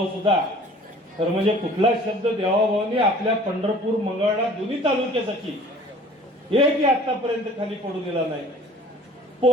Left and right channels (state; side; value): normal; both; correlation 0.49